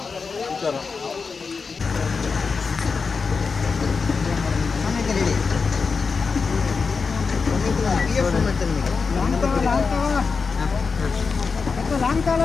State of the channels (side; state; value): right; quieter; 4.9 dB